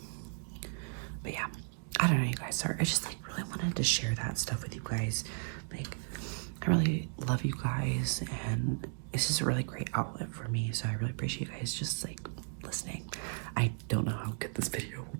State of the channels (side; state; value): left; silent; 54 dB below the other